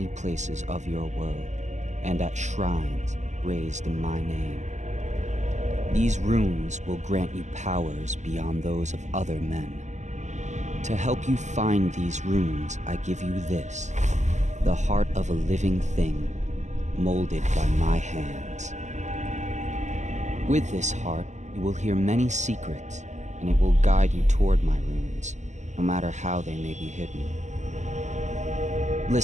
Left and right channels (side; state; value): left; late; 0.34 ms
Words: places of your world, and at shrines raised in my name. These runes will grant you powers beyond those of other men. To help you find these runes, I give you this, the heart of a living thing, molded by my hands. With this heart, you will hear many secrets, and it will guide you toward my runes, no matter how they may be hidden.